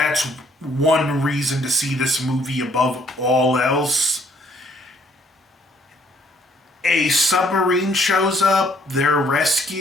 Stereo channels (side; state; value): both; normal; correlation 0.64